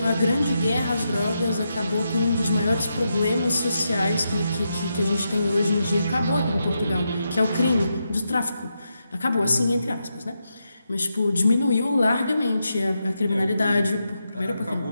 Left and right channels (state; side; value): inverted; both; correlation -0.85